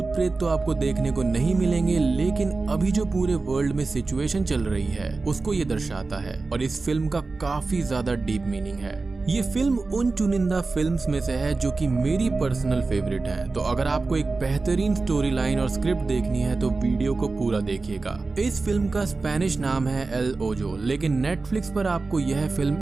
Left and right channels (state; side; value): quieter; left; 3.8 dB